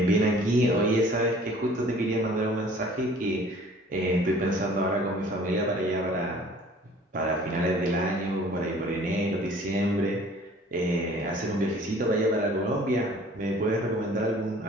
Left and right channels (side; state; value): both; normal; correlation 0.51